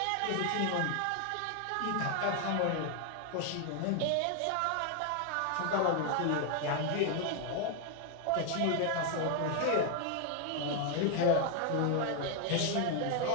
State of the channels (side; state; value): both; different; correlation 0.00